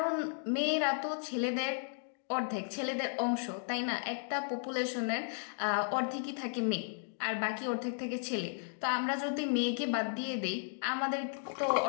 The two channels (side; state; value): right; silent; digital silence